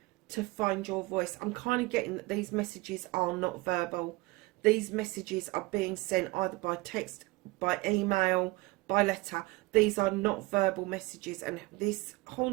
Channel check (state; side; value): quieter; left; 22.7 dB